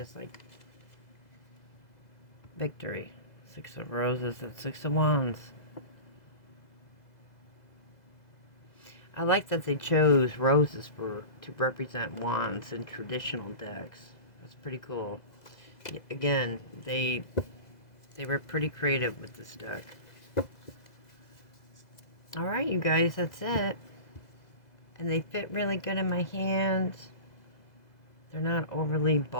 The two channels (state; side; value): late; right; 2.0 ms